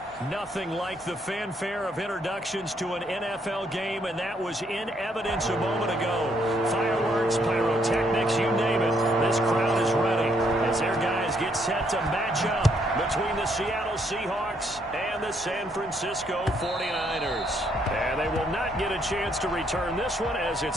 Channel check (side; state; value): both; normal; correlation 0.71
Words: Nothing like the fanfare of introductions to an NFL game, and that was in evidence a moment ago. Fireworks, pyrotechnics, you name it. This crowd is ready as their guys get set to match up between the Seattle Seahawks and the San Francisco 49ers. And they will not get a chance to return this one as